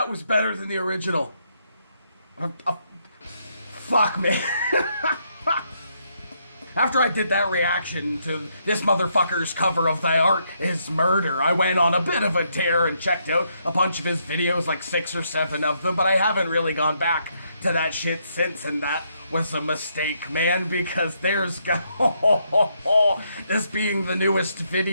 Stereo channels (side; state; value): both; inverted; correlation -0.76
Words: was better than the original. Fuck, man. After I did that reaction to this motherfucker's cover of Thy Art Is Murder, I went on a bit of a tear and checked out a bunch of his videos, like 6 or 7 of them, but I haven't really gone back to that shit since, and that was a mistake, man, because there's this being the newest